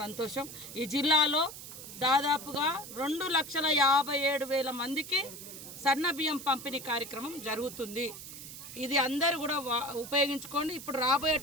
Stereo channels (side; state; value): right; noise; hiss, 12 dB below the sound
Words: సంతోషం. ఈ జిల్లాలో దాదాపుగా 2,57,000 మందికి సన్న బియ్యం పంపిణీ కార్యక్రమం జరుగుతుంది. ఇది అందరూ కూడా ఉపయోగించుకోండి. ఇప్పుడు